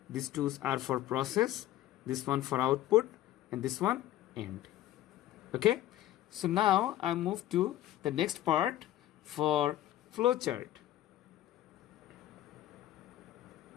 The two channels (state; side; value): quieter; right; 13.7 dB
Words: these two are for process, this one for output, and this one end. Okay, so now I move to the next part for flowchart.